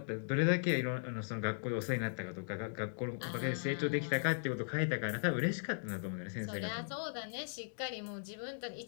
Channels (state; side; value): silent; right; digital silence